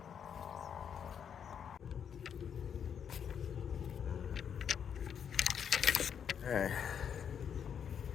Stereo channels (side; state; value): right; quieter; 7.9 dB